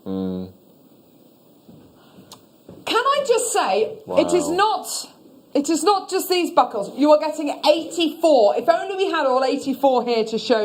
Can I just say, it is not just these buckles. You are getting 84. If only we had all 84 here to show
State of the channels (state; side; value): identical; both; correlation 1.00